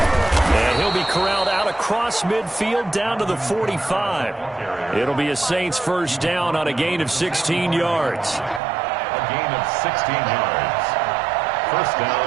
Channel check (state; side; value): drops out; left; at 8.6 s